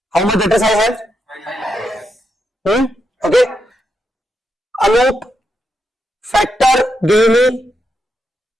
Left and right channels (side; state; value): both; normal; correlation 0.83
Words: How much debtors I have? Okay. Anup factor gave me